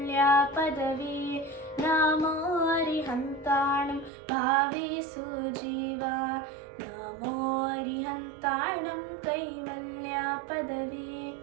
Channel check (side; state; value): left; drops out; at 4.1 s